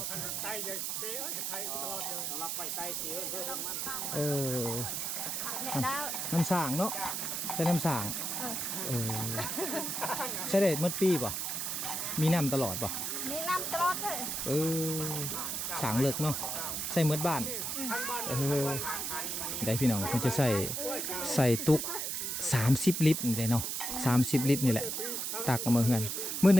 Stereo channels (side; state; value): right; noise; hiss, 2 dB below the sound